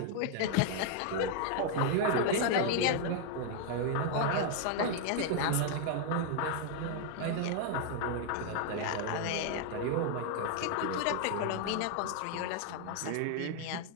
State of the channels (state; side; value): different; both; correlation 0.00